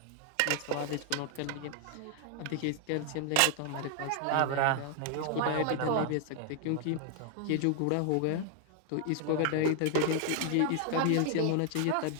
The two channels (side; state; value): both; different; correlation 0.00